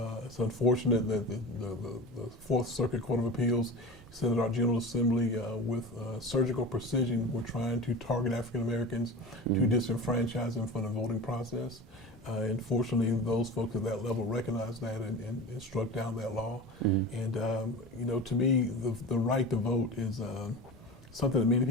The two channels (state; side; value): normal; both; correlation 0.32